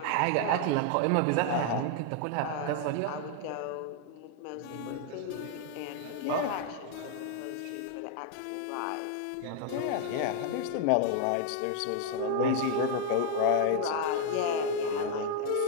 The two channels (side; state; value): both; different; correlation 0.00